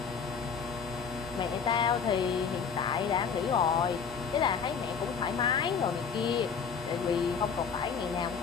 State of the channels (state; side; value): quieter; right; 6.4 dB